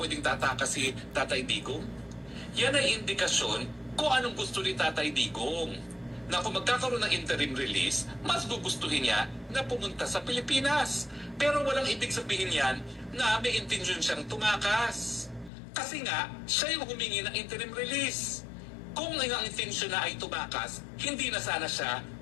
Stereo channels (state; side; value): drops out; right; at 15.5 s